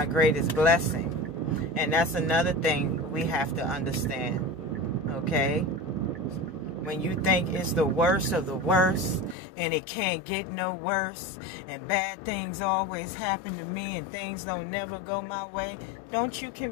greatest blessing. And that's another thing we have to understand. Okay? When you think it's the worst of the worst and it can't get no worse and bad things always happen to me and things don't never go my way, don't you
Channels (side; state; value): right; drops out; at 9.3 s